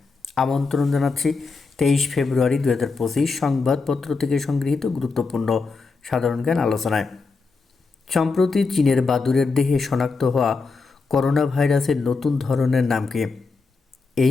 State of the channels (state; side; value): quieter; right; 4.3 dB